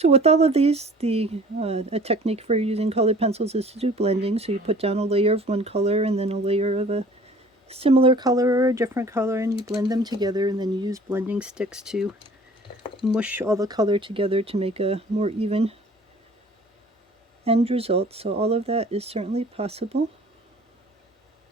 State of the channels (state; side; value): normal; both; correlation 0.49